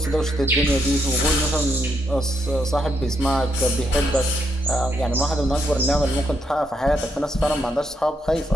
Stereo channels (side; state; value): both; normal; correlation 0.77